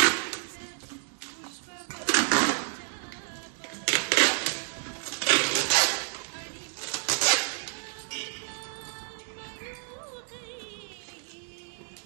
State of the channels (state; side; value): silent; left; 58 dB below the other